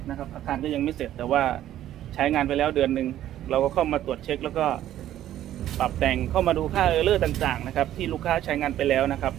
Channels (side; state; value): left; quieter; 12.4 dB